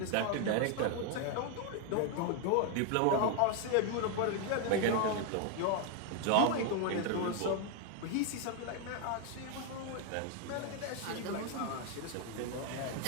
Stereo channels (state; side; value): different; both; correlation 0.00